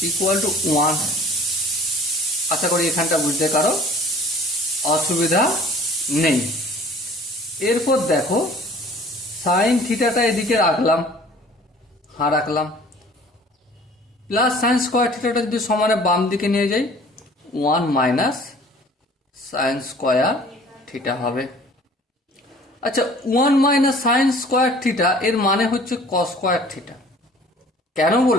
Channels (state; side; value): normal; both; correlation 0.50